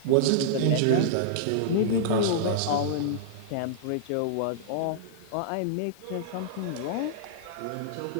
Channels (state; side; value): different; both; correlation -0.02